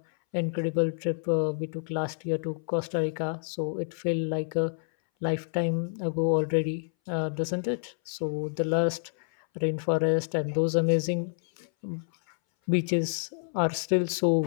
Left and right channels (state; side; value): silent; right; 59 dB below the other